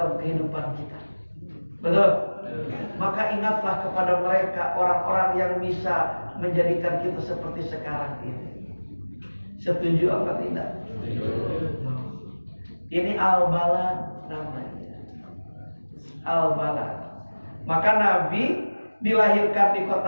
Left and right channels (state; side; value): inverted; both; correlation -1.00